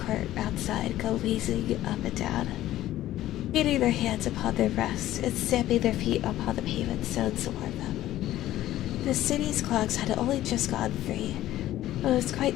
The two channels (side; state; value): right; quieter; 14.2 dB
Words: outside go wheezing up and down, beating their hands upon their breasts and stamping their feet upon the pavement stones to warm them. The city's clocks had only just gone 3, but it was